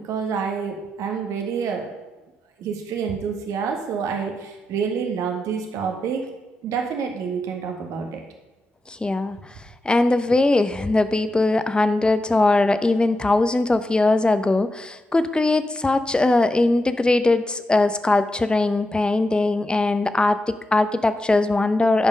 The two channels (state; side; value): normal; both; correlation 0.88